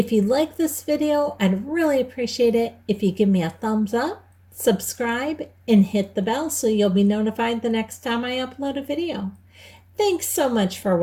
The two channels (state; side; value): identical; both; correlation 1.00